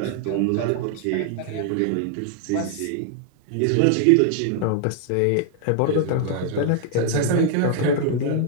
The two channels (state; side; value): different; both; correlation 0.00